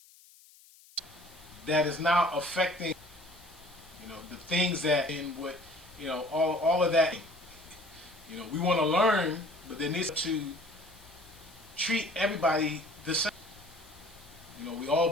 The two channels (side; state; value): left; noise; hiss, 25 dB below the sound